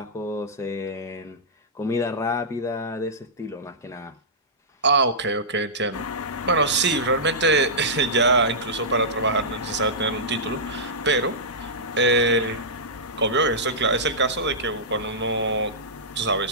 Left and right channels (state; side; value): normal; both; correlation -0.15